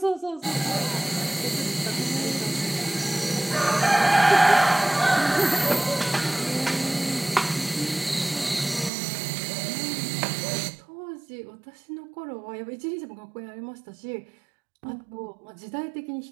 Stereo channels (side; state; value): left; drops out; at 8.9 s